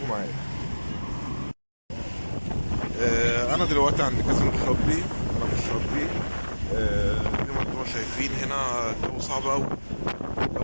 معايا. انا دلوقتي عند كازينو الشاطبي، انا في الشاطبي. زي ما انتم شايفين هنا الجو صعب قوي،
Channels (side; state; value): both; inverted; correlation -1.00